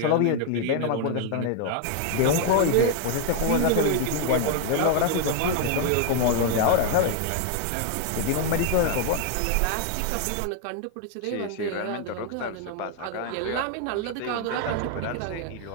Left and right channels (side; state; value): both; different; correlation 0.00